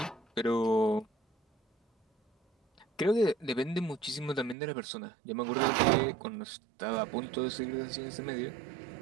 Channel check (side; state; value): left; drops out; at 4.5 s